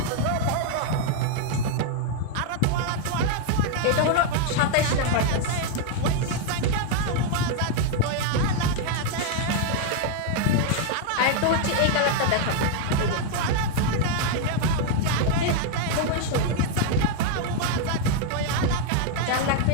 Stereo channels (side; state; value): both; different; correlation 0.00